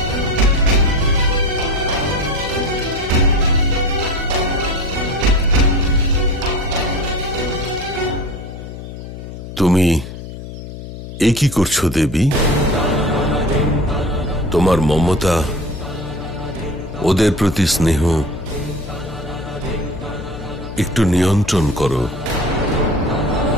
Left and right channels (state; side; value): noise; left; hum, 11 dB below the sound